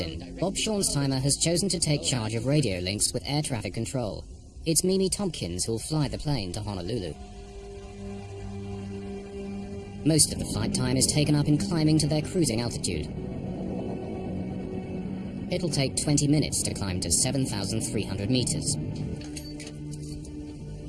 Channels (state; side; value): identical; both; correlation 1.00